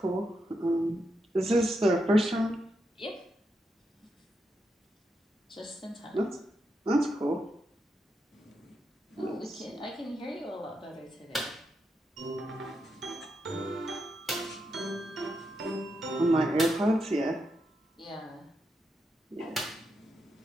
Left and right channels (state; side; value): normal; both; correlation 0.84